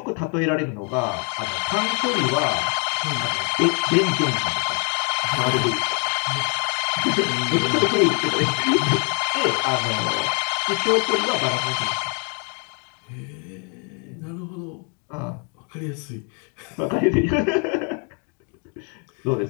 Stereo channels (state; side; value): quieter; right; 38.1 dB